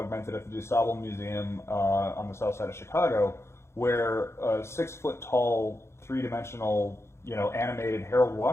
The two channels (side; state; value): right; late; 0.13 ms